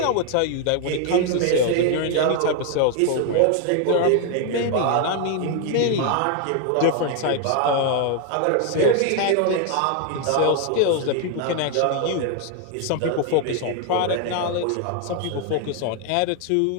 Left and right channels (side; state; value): both; different; correlation 0.01